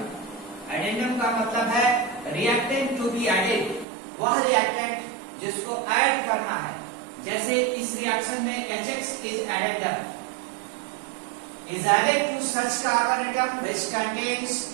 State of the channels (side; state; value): left; drops out; at 3.9 s